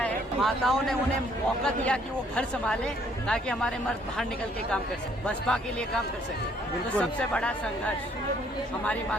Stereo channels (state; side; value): normal; both; correlation 0.64